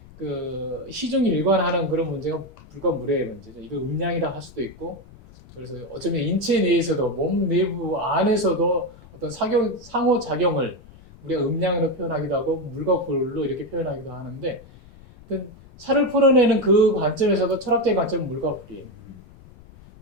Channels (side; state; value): left; noise; rumble, 22 dB below the sound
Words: 그 시중 일관하는 그런 문제가 불과 물의 문제죠. 이거 음량이라 할 수도 있고, 그래서 어쩌면 인체 내에서도 몸 내부 안에서도 어떤 상호작용을 우리가 음량으로 표현하기도 하고 물과 불로 이렇게 표현하기도 하는데, 차를 풀어내는 그 관점에서도 철학적인 관점은 물과 불이에요.